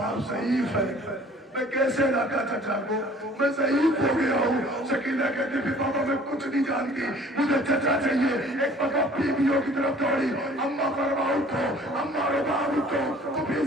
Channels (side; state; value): both; normal; correlation 0.52